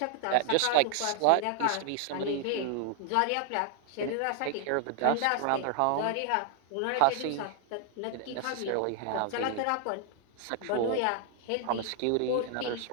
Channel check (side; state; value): both; different; correlation 0.00